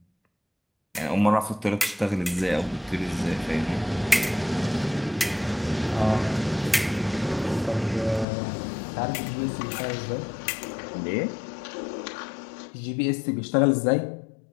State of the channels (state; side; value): drops out; right; at 8.2 s